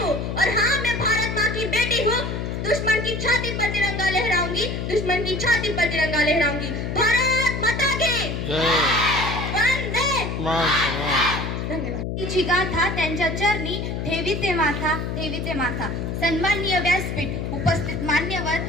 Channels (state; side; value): noise; left; hum, 3 dB below the sound